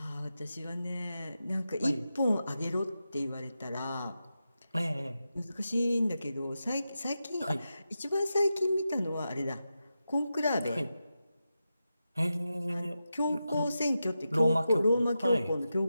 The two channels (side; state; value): both; inverted; correlation -0.90